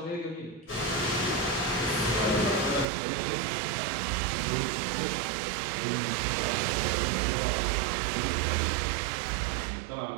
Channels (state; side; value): drops out; left; at 2.9 s